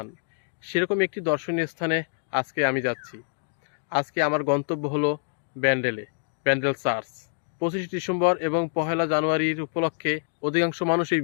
সেরকম একটি দর্শনীয় স্থানে আজকে আমি যাচ্ছি। আজকে আমার গন্তব্য হলো ব্যান্ডেল চার্চ। 25 ডিসেম্বর এবং 1 জানুয়ারির উপলক্ষে অধিকাংশ মানুষই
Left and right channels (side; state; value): right; silent; digital silence